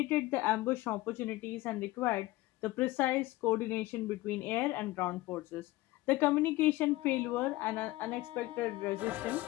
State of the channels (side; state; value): right; quieter; 18.5 dB